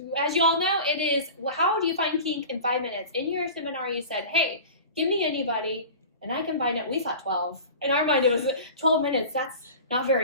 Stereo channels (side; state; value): both; inverted; correlation -0.36